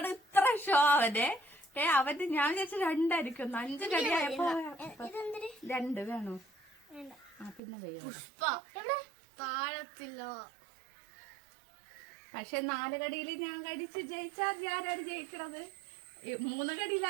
ഇത്ര ഷോ അവന്റെ. അവന്റെ ഞാൻ വിചാരിച്ച 2 ആയിരിക്കും. 5 കടിയായപ്പോ 2 വേണോ? പിന്നെ പക്ഷെ 4 കടിയിൽ ഞാൻ കഴിച്ച് ജയിച്ചാൽ ഞാനാണ് ജയിക്കണത്. 3 കടിയിൽ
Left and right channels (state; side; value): drops out; left; at 7.6 s